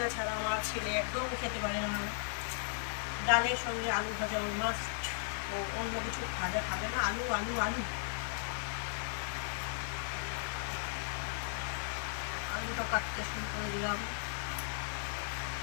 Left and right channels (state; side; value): silent; right; 54 dB below the other